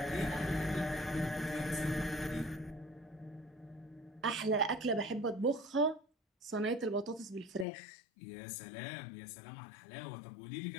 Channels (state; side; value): drops out; right; at 7.7 s